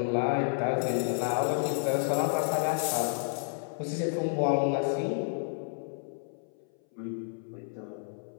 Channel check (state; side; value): silent; right; 57 dB below the other